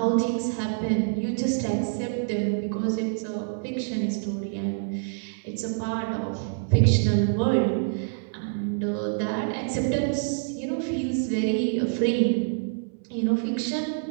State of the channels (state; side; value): silent; left; 61 dB below the other